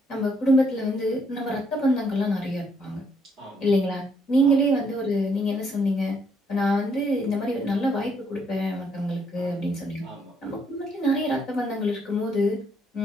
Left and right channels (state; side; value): normal; both; correlation 0.71